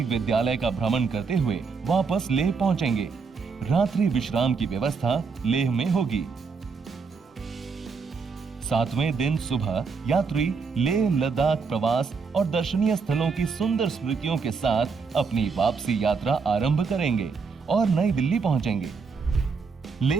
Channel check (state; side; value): quieter; left; 5.1 dB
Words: विद्यालय का भ्रमण करते हुए वापस लेह पहुंचेंगे। रात्रि विश्राम की व्यवस्था लेह में होगी। 7वें दिन सुबह यात्री लेह लद्दाख प्रवास और दर्शनीय स्थलों की सुंदर स्मृतियों के साथ अपनी वापसी यात्रा आरंभ करेंगे और नई दिल्ली पहुंचेंगे।